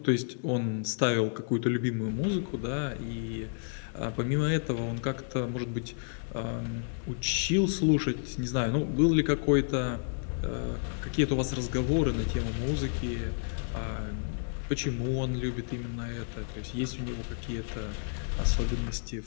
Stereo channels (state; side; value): silent; right; 57 dB below the other